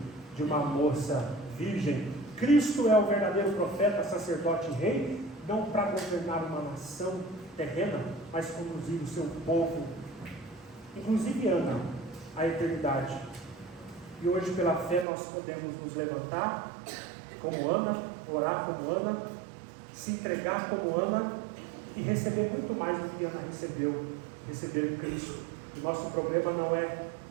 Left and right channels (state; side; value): drops out; left; at 15.1 s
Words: de uma moça virgem. Cristo é o verdadeiro profeta, sacerdote e rei, não para governar uma nação terrena, mas conduzir o seu povo, inclusive Ana, à eternidade. E hoje, pela fé, nós podemos nos levantar como Ana, orar como Ana, se entregar como Ana e receber muito mais do que Ana recebeu, receber Cristo. O nosso problema não é